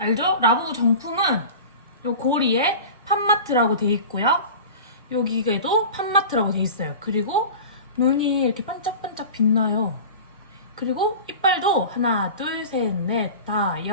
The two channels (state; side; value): inverted; both; correlation -0.35